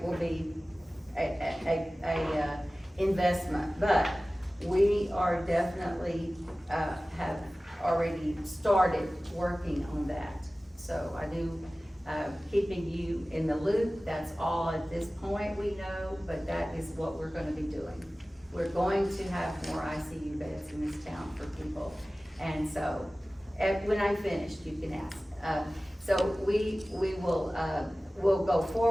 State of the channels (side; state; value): both; normal; correlation 0.97